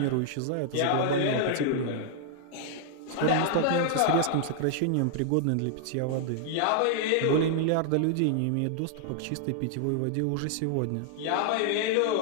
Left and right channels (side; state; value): both; different; correlation -0.01